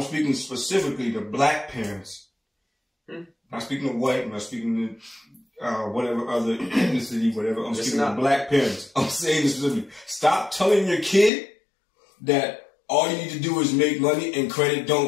speaking specifically to black parents. Not speaking to white, I'm not speaking to whatever other ethnicity, whatever. I'm speaking to black parents. I'm saying this specifically. Stop telling your kid that all you need to do is make money and credit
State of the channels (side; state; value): right; drops out; at 11.3 s